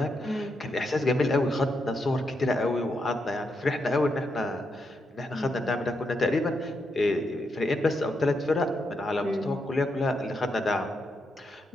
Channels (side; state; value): both; normal; correlation 0.82